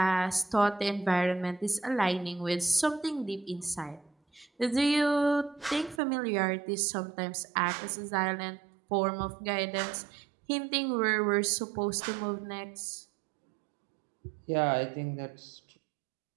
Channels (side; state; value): left; drops out; at 6.0 s